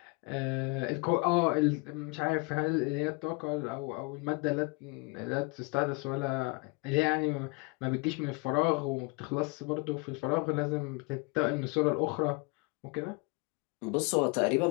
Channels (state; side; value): quieter; right; 29.2 dB